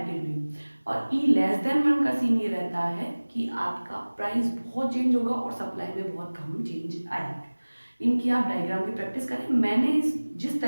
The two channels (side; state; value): both; inverted; correlation -1.00